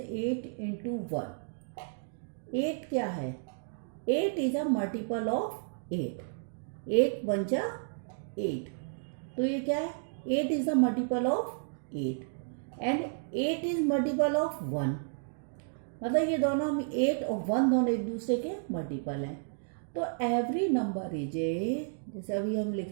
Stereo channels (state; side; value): silent; left; digital silence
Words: 8 इंटू 1, 8 क्या है? 8 is a multiple of 8। 8 one जा 8, तो ये क्या है? 8 is a multiple of 8 and 8 is multiple of 1। मतलब ये दोनों हम 8 और 1 दोनों एक दूसरे के मल्टीपल हैं। तो एवरी नंबर इज ए, जैसे अभी हम